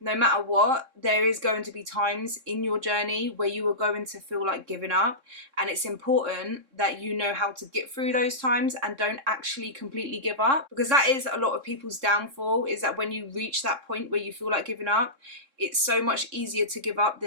matter what, there is going to be times in your journey where you are going to feel like giving up. And it's important that you know how to get through those times and don't actually completely give up, because that is a lot of people's downfall, is that when you reach that point where you feel like giving up, it's so much easier to give up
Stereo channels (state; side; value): late; left; 3.7 ms